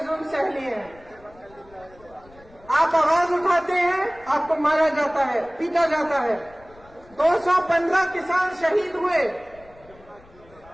सह लिए हैं। आप आवाज उठाते हैं, आपको मारा जाता है, पीटा जाता है। 215 किसान शहीद हुए।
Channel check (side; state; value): left; noise; rumble, 25 dB below the sound